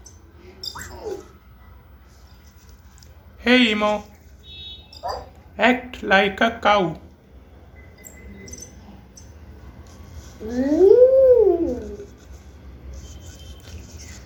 Hey Emo, act like a cow.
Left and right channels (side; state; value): both; identical; correlation 1.00